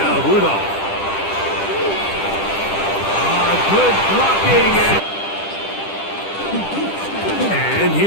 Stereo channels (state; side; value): late; right; 10 ms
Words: Rudolph. Good blocking. And